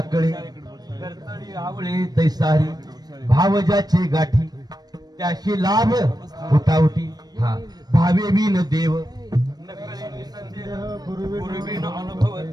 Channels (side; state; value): left; late; 0.19 ms